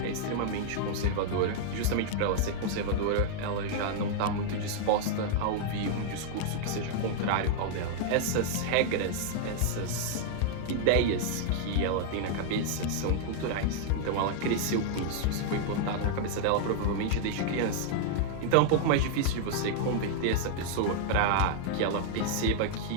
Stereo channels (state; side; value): different; both; correlation -0.01